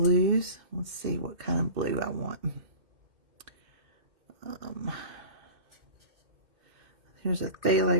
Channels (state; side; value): late; left; 2.1 ms